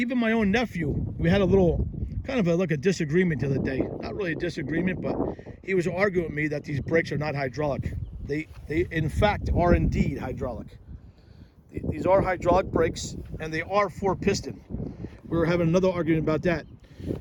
my own nephew, we had a little, kind of like a disagreement the other day. Not really a disagreement, but he was arguing with me that these brakes are not hydraulic. They in fact, are indeed hydraulic. These are hydraulic brakes, and they are 4-piston. We were having another argument about that.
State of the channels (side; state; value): both; identical; correlation 1.00